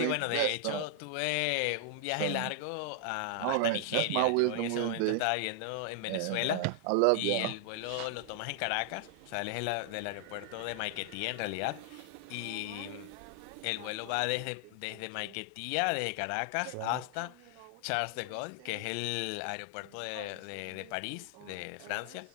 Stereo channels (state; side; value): different; both; correlation 0.00